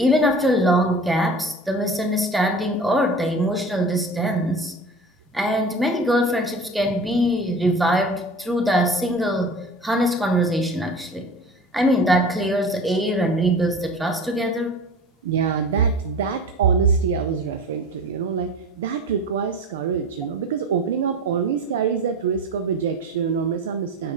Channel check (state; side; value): normal; both; correlation 0.38